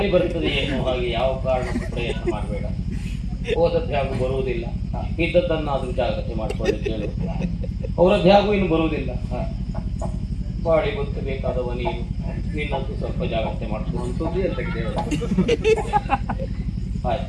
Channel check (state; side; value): identical; both; correlation 1.00